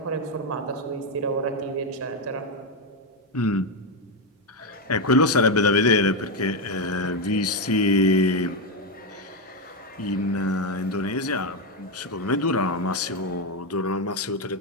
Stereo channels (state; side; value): normal; both; correlation 0.06